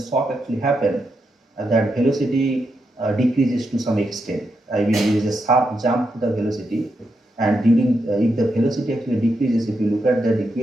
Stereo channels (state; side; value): normal; both; correlation 0.83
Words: actually happen, that velocity decreases to some extent. I mean, there is a sharp jump to the velocity, and during if the velocity actually decreases, if you look at the